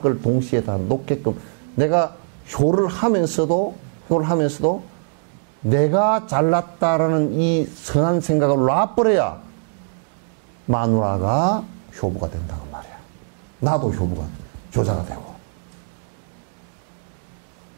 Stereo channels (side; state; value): left; silent; digital silence